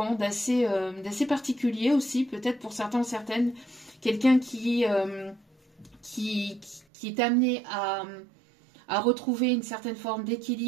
d'assez particulier aussi, peut-être pour certains ou certaines. Quelqu'un qui est amené à retrouver une certaine forme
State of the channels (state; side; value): drops out; left; at 6.9 s